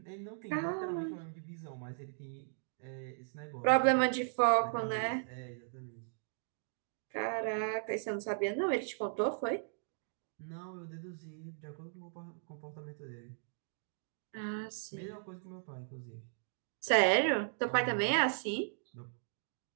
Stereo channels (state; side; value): silent; left; digital silence